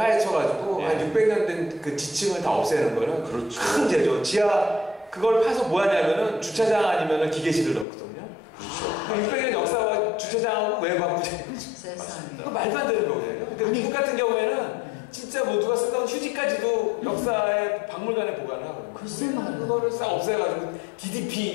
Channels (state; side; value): drops out; right; at 7.9 s